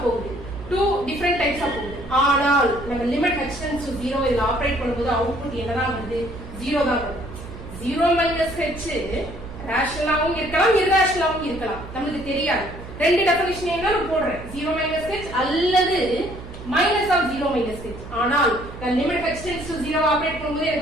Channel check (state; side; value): noise; right; hum, 13 dB below the sound